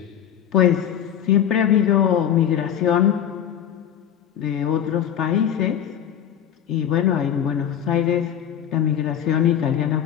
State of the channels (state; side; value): quieter; right; 9.7 dB